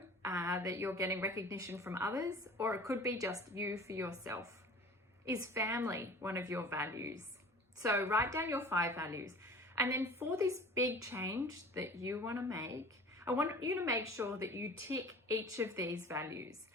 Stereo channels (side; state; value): both; normal; correlation 0.43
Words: that you're getting recognition from others, or it could be just you for yourself. Is family one of your values? So write down your 5 values. And then for this big change that you want to make, I want you to make sure that you tick each of these values